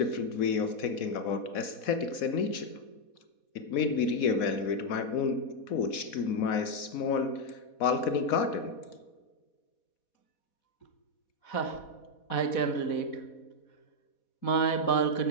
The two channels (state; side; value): late; right; 4.1 ms